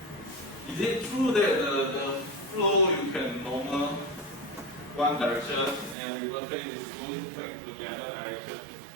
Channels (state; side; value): drops out; left; at 6.0 s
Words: Is it true that the flow you can normal one direction and reverse phase is going back to the other direction?